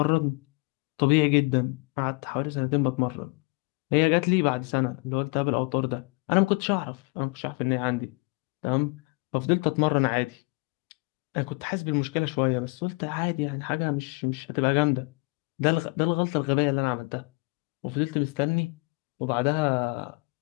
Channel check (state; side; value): quieter; right; 29.8 dB